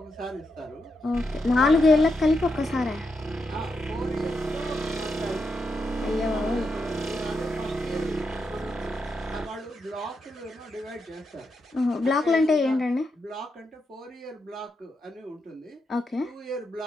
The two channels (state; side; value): normal; both; correlation 0.84